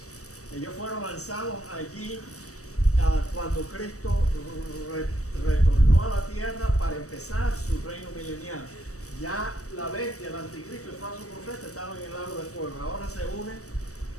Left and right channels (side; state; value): right; late; 0.65 ms